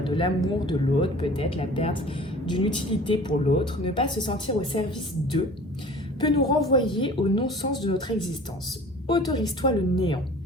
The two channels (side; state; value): both; normal; correlation 0.45